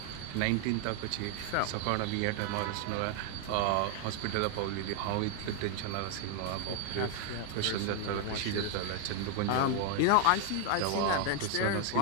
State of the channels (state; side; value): different; both; correlation 0.00